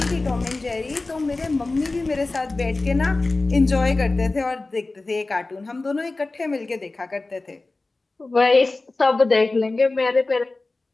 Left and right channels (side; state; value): right; quieter; 3.3 dB